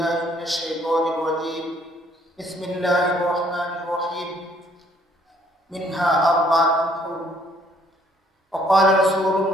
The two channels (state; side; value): normal; both; correlation 0.64